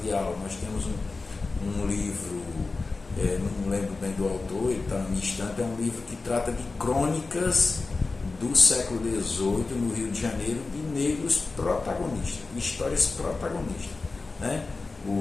aula. Nós temos um livro, não lembro bem do autor, ele está na minha estante, é um livro que trata de crônicas do século XVIII no Rio de Janeiro, de negros protagonistas, de histórias protagonistas, né?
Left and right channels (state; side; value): quieter; right; 3.8 dB